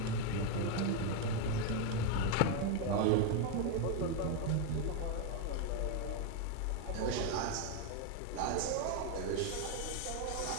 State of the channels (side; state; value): both; different; correlation 0.01